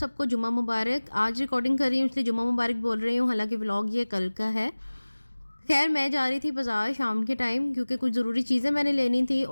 सबको जुम्मा मुबारक। आज रिकॉर्डिंग कर रही हूँ इसलिए जुम्मा मुबारक बोल रही हूँ, हालांकि व्लॉग ये कल का है। खैर मैं जा रही थी बाज़ार शाम के टाइम क्योंकि कुछ ज़रूरी चीज़ें मैंने लेनी थी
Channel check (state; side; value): inverted; both; correlation -1.00